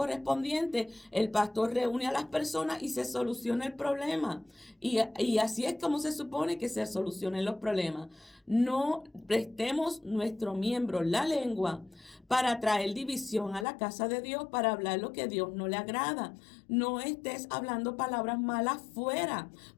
el pastor reúne a las personas y se soluciona el problema. Y así es como se supone que se solucionen los problemas. No prestemos nuestro miembro, la lengua, para traer división a la casa de Dios, para hablar lo que Dios no le agrada. No estés hablando palabras malas fuera,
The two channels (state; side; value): drops out; right; at 13.7 s